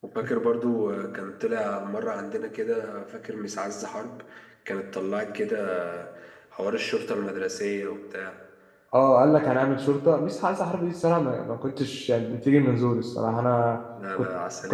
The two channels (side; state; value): both; identical; correlation 1.00